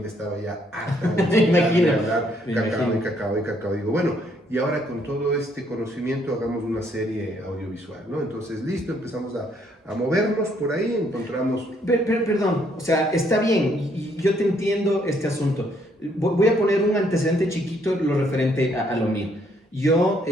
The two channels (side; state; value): both; normal; correlation 0.69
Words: estaba ya harta de hablar cacao. Digo, bueno, y ahora con todo este conocimiento hagamos una serie audiovisual, ¿no? Entonces, listo, empezamos a movernos por ahí, encontramos... Perdón, o sea, está bien, y yo te entiendo este asunto. Voy a poner un antecedente chiquito, lo referente a lo mío. Yo